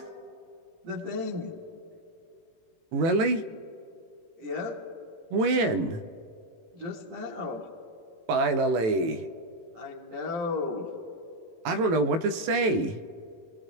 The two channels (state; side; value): late; left; 18 ms